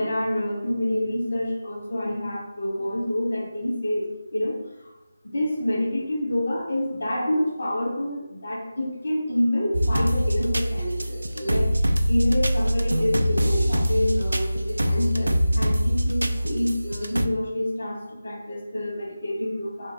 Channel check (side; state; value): both; inverted; correlation -0.96